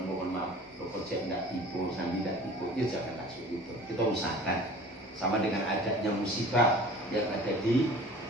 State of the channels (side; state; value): both; normal; correlation 0.43